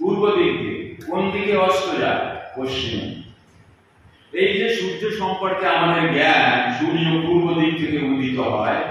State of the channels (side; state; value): both; identical; correlation 1.00